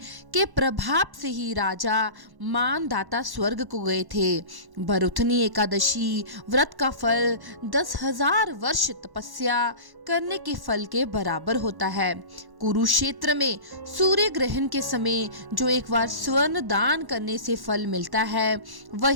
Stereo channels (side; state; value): left; late; 1.1 ms